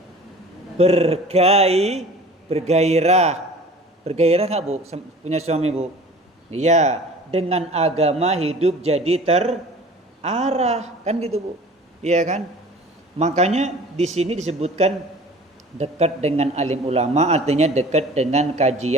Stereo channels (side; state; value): both; normal; correlation 0.44